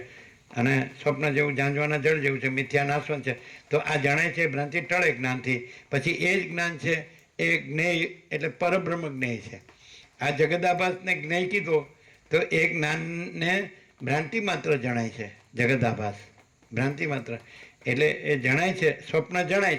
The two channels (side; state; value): both; identical; correlation 1.00